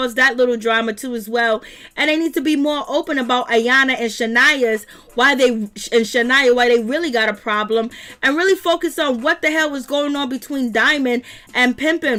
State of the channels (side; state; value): both; identical; correlation 1.00